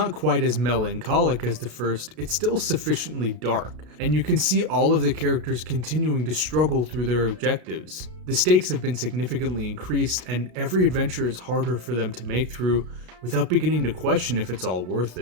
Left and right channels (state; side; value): late; left; 33 ms